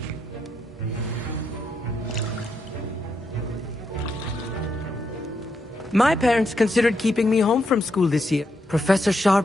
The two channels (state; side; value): normal; both; correlation 0.80